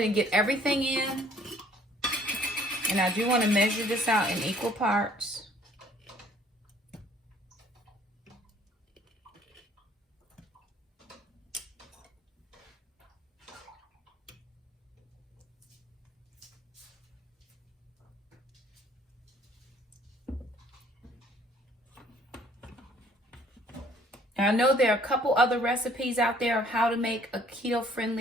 and get everything in. And I do want to measure this out in equal parts. And I know there are a couple other recipes out there of how to make a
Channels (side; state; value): both; normal; correlation 0.59